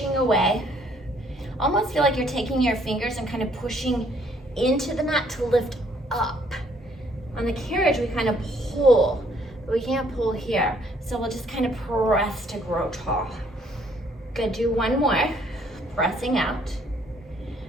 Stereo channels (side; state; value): both; normal; correlation 0.64